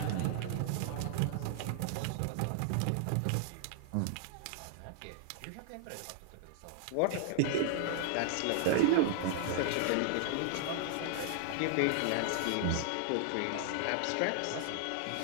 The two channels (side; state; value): both; different; correlation -0.01